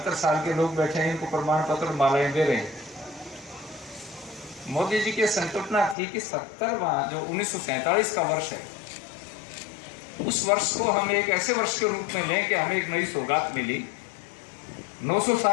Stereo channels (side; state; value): right; drops out; at 6.0 s